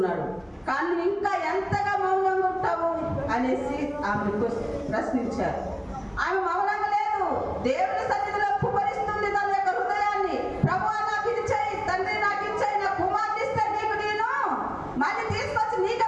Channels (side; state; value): both; identical; correlation 1.00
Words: కానీ ఇంకా ఎంతగా మౌనంగా ఉంటావు అనేసి ఆమె ప్రశ్నించారు. ఆమె మౌనంగా లేదు, దేవుని సన్నిధిలో కుమరిస్తుంది తన యొక్క హృదయాన్ని. ప్రభువా నాకు ఇది చేయి, తండ్రి నాకు ఇచ్చాయి, నా కుమార్తె ఇస్తే నీకు నేను మళ్ళీ తీసుకొచ్చి నీకే